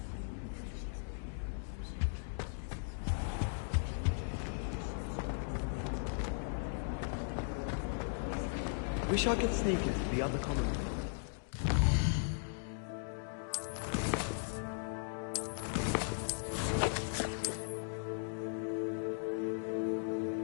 Wish I could sneak into the other common room.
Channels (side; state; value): right; silent; digital silence